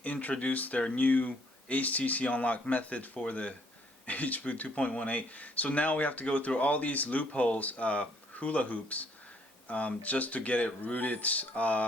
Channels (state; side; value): normal; both; correlation 0.66